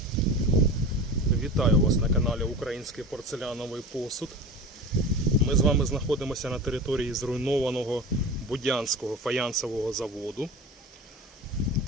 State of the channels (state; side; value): normal; both; correlation 0.32